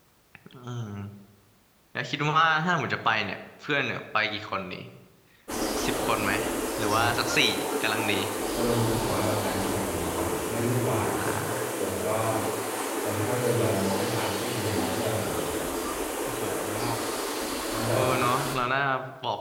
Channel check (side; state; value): both; identical; correlation 1.00